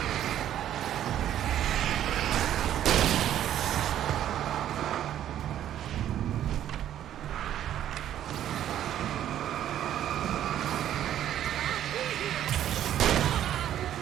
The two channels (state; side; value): quieter; left; 11.3 dB